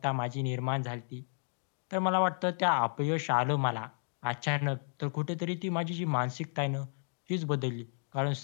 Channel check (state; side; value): silent; right; digital silence